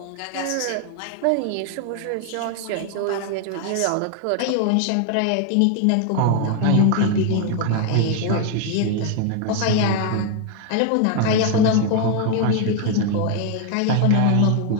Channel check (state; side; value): different; both; correlation 0.01